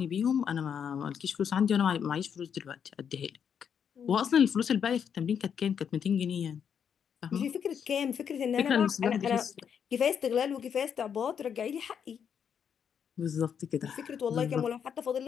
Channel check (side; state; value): right; quieter; 7.7 dB